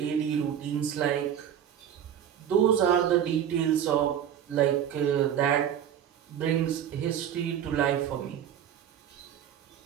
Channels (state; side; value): quieter; left; 9.6 dB